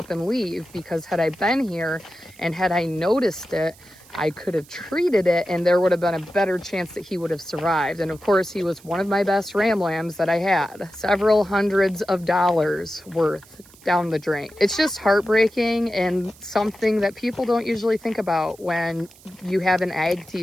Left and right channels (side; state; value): right; noise; hiss, 25 dB below the sound